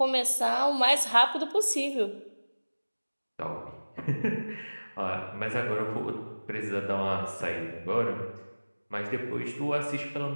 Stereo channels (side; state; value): both; inverted; correlation -1.00